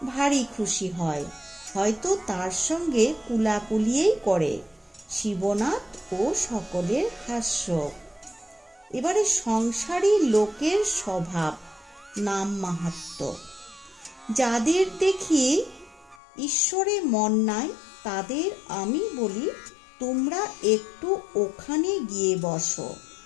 ভারী খুশি হয়, হয়তো তার সঙ্গে কুলাকুলিয়েই করে। শিবনাথ ও সকলের হাস্য। এবারে সংসারী লোকের স্বভাব, নাম মাহাত্ম্য। যাদের দেখি ঈশ্বরে মন নাই, তাদের আমি বলি, তোমরা একটু ওখানে গিয়ে বসো,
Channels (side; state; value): right; drops out; at 16.2 s